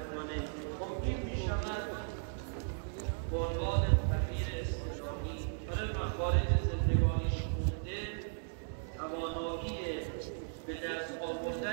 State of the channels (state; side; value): silent; left; 54 dB below the other